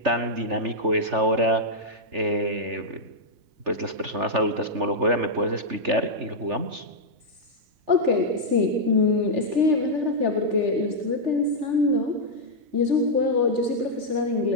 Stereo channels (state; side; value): late; left; 3.4 ms